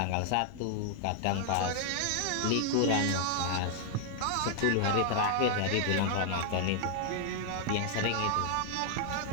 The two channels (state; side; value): different; both; correlation -0.01